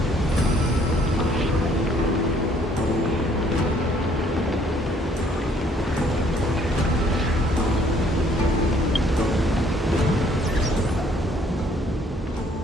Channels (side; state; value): both; normal; correlation 0.62